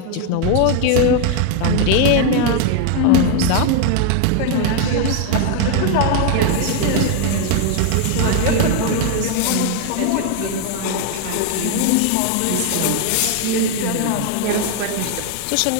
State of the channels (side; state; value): both; different; correlation 0.01